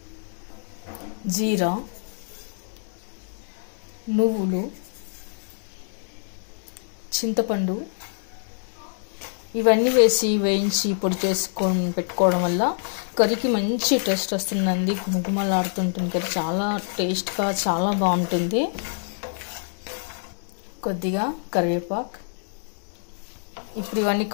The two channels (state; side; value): silent; right; digital silence